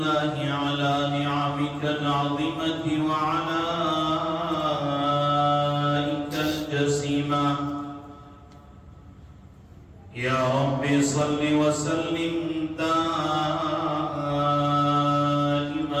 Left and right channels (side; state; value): both; identical; correlation 1.00